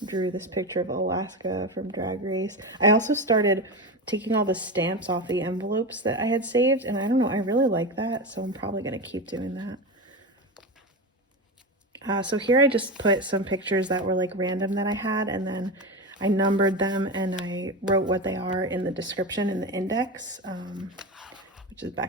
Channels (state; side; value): normal; both; correlation 0.20